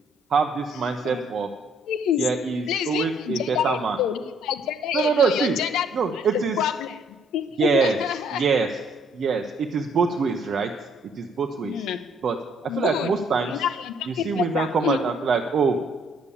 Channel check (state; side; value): normal; both; correlation 0.65